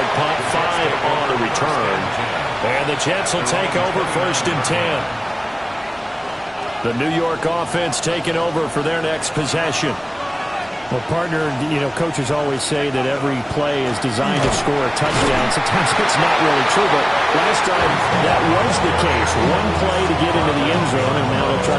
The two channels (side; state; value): both; identical; correlation 1.00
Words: punt, 5 on the return. And the Jets will take over first and 10. The New York offense taking over for their next possession. Well, partner, coaches always say that every play is designed to score a touchdown. Sometimes it's not really true, but last time that was the case. One play to get into the end zone, and now they'll try